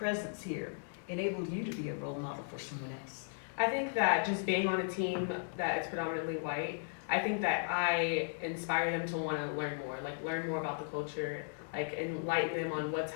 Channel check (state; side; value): silent; right; digital silence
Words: here enabled you to be a role model for someone else? I think that just being on a team that is predominantly white, I think that I inspire them to want to learn more about the culture, like enlighten them on what's